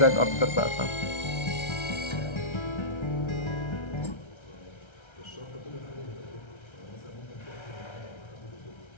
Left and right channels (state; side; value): late; right; 1.3 ms